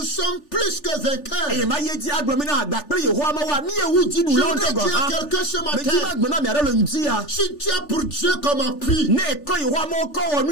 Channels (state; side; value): late; right; 3.4 ms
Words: sommes plus que eye vainqueurs. ma ye dzi agblɔ bena gba kple Yehowa Mawua míewu Je dziɖulawo voudrais ŋutɔ gɔ dire à hã quelqu'un ce medzi ma matin, gblɔ na mi aɖe le ŋdi ya si tu as pour Dieu comme appui, ne ekɔ Yehowa Mawu kɔ wɔ